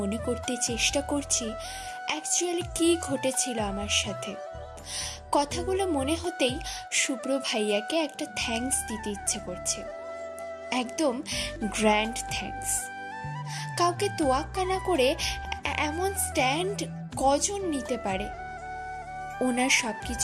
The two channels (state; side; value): identical; both; correlation 1.00